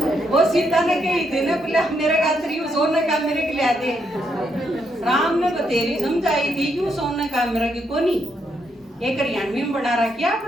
वो सीता ने कही थी ना, बोले मेरे खातिर यू सोने का मेरे के लिया दे। राम ने बतेरी समझाई थी यू सोने का मेरा की कोनी, एक 93 में बना रखी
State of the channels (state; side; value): normal; both; correlation 0.77